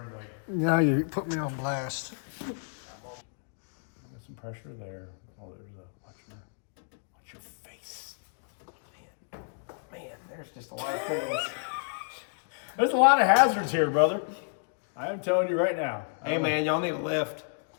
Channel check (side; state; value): right; silent; digital silence